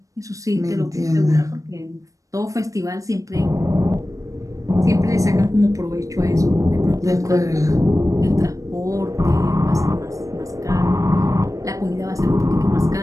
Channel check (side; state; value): left; late; 0.16 ms